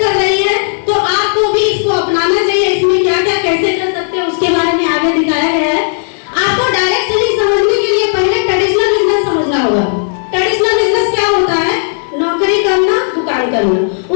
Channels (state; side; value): silent; right; digital silence